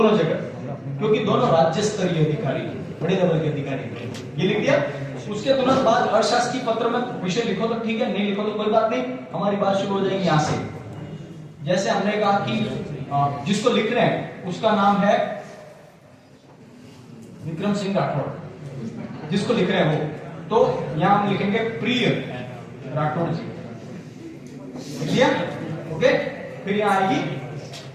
जगह, क्योंकि दोनों राज्य स्तरीय अधिकारी, बड़े लेवल के अधिकारी। ये लिख दिया। उसके तुरंत बाद अशासकीय पत्र में विषय लिखो तो ठीक है, नहीं लिखो तो कोई बात नहीं। हमारी बात शुरू हो जाएगी यहाँ से। जैसे हमने कहा कि जिसको लिख रहे हैं उसका नाम है विक्रम सिंह राठौड़, जिसको लिख रहे हैं वो, तो यहां हम लिखेंगे प्रिय राठौड़ जी, लिख ओके। फिर यहां आएगी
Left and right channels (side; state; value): both; identical; correlation 1.00